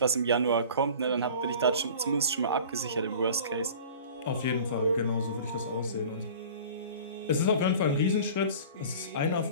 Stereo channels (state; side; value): inverted; both; correlation -0.42